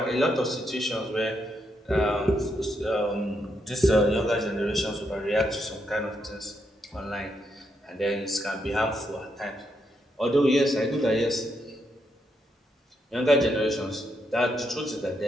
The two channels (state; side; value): normal; both; correlation 0.80